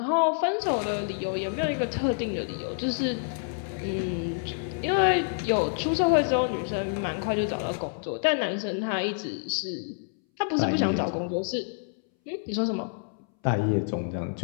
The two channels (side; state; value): right; silent; 60 dB below the other